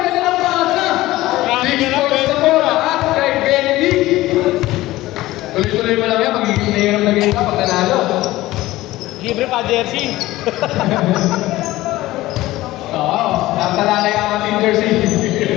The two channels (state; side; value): quieter; right; 17.2 dB